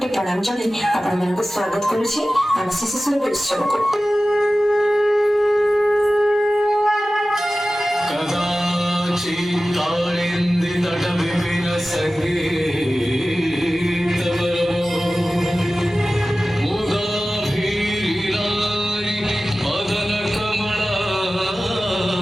ପ୍ରଣାମ ଜଣାଇ ଆପଣମାନଙ୍କୁ ସ୍ୱାଗତ କରୁଛି ଆମ ଶିଶୁ ସୁରଭି ଉତ୍ସବକୁ।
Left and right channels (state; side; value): normal; both; correlation 0.96